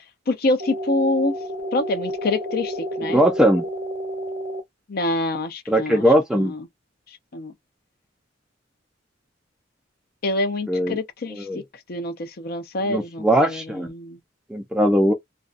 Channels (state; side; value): normal; both; correlation 0.56